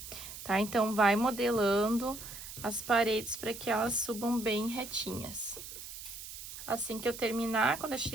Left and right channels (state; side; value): noise; right; hiss, 11 dB below the sound